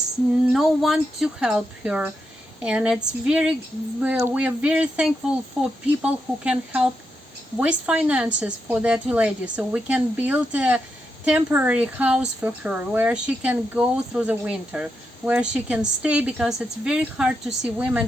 no one to help her, and we are very thankful for people who can help with finances for that lady, so we can build a temporary house for her where she can go through the winter, where she can stay, because it's very hard to see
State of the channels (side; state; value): both; normal; correlation 0.84